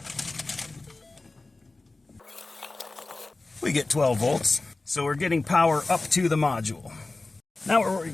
We get 12 volts, so we're getting power up to the module. Now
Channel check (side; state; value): right; quieter; 3.3 dB